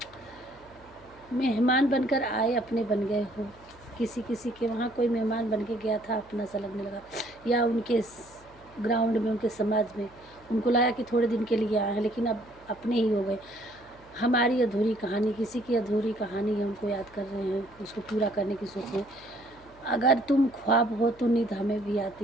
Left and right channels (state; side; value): noise; left; hum, 25 dB below the sound